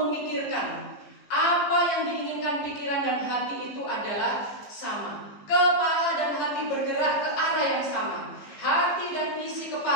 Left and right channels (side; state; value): right; late; 15 ms